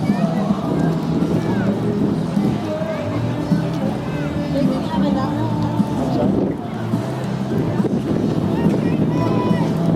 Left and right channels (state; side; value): identical; both; correlation 1.00